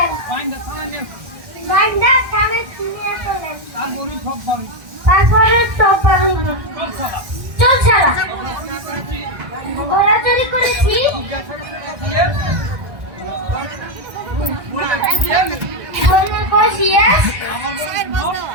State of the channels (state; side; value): late; left; 1.6 ms